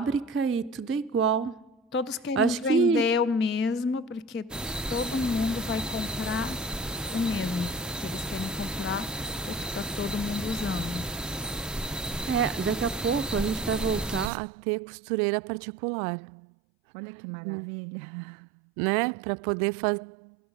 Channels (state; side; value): drops out; left; at 14.3 s